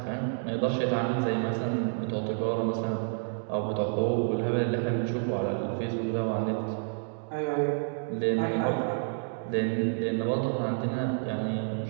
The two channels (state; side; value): silent; left; 58 dB below the other